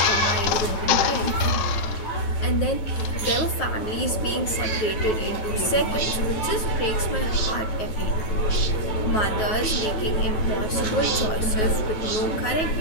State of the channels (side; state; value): right; late; 9.4 ms